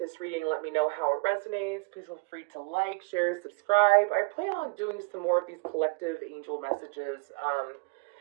reading and let me know how it resonates. Please feel free to like, share, subscribe. I plan on doing some more of these collective angel messages,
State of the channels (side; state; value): left; quieter; 30.6 dB